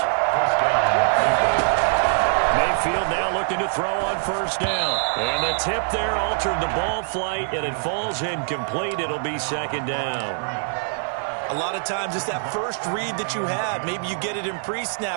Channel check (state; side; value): silent; left; digital silence